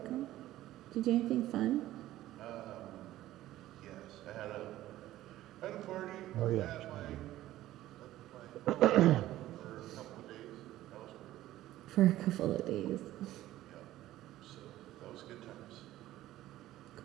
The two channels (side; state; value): left; quieter; 14.8 dB